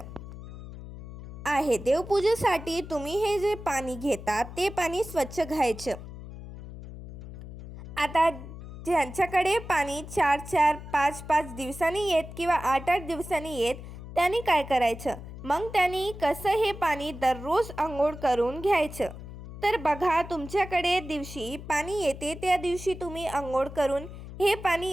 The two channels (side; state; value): left; noise; hum, 12 dB below the sound